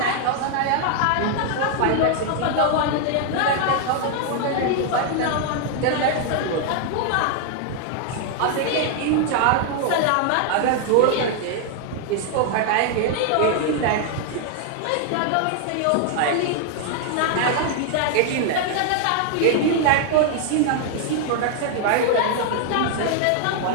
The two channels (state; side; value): different; both; correlation 0.00